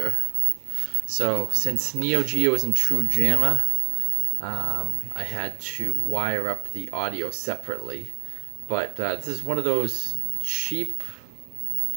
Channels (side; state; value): left; silent; digital silence